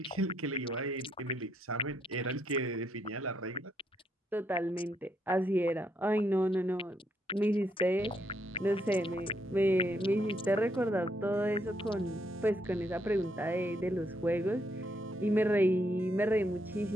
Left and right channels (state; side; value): normal; both; correlation 0.76